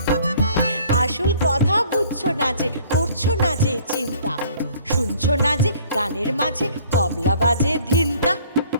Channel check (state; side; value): inverted; both; correlation -0.55